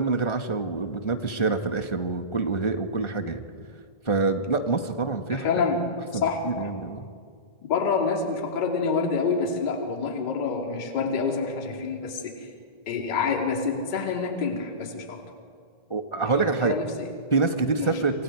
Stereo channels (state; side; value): late; right; 1.4 ms